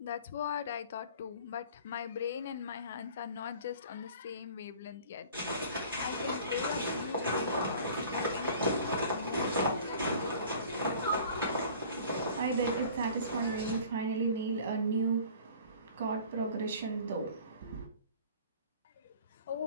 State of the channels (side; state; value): both; inverted; correlation -0.47